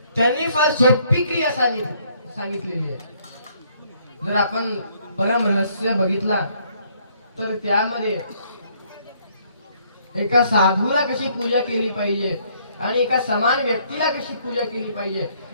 त्यांनी फार सोपी क्रिया सांगितलेली आहे जर आपण परम रहस्य बघितला तर त्यामध्ये एका साधूला कशी पूजा केली पाहिजे आणि एका समान व्यक्तीला कशी पूजा केली पाहिजे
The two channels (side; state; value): both; inverted; correlation -0.66